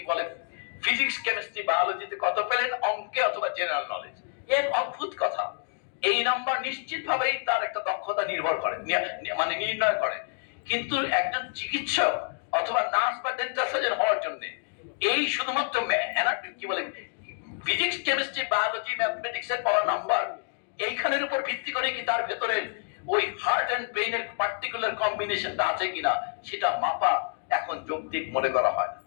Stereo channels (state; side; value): silent; right; 59 dB below the other